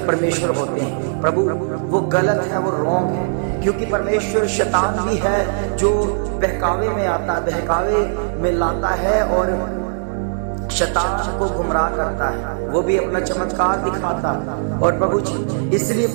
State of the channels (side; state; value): left; silent; digital silence